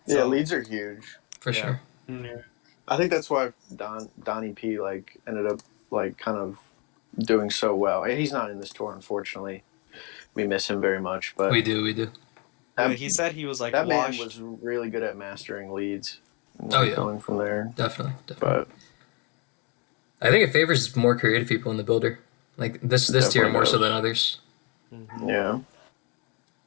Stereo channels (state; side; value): quieter; right; 31.9 dB